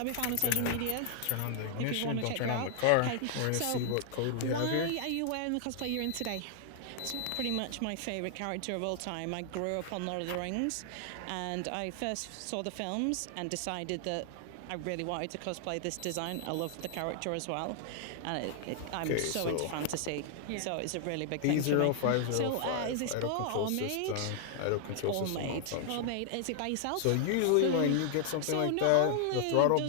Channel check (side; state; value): both; different; correlation 0.00